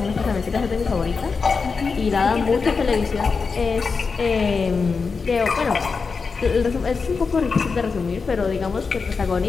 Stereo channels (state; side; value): quieter; right; 4.9 dB